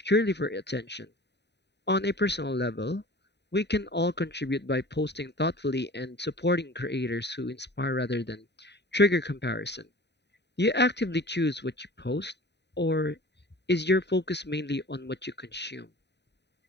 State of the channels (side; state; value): right; late; 0.50 ms